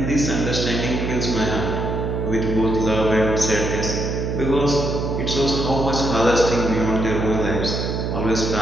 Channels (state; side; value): noise; right; hum, 2 dB below the sound